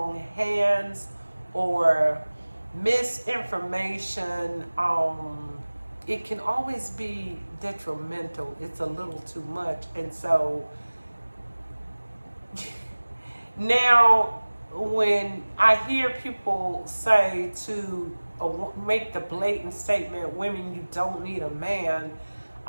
hands or misinformation, it can always be detrimental. It's a little too much. And so now when I hear people say to make the blatant statement, women, you don't need a man,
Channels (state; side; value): inverted; both; correlation -1.00